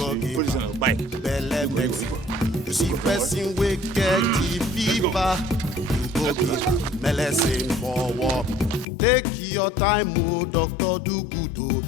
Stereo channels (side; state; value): right; drops out; at 8.8 s